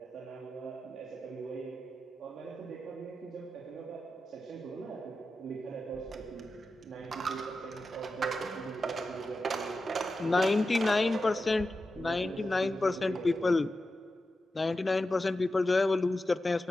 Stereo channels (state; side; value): normal; both; correlation 0.91